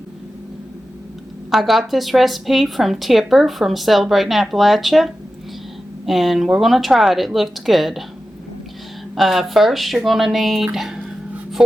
from Tipper from Celebrating Appalachia. And we're going to try it. It looked good. First, you're going to need,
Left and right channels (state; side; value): normal; both; correlation 0.93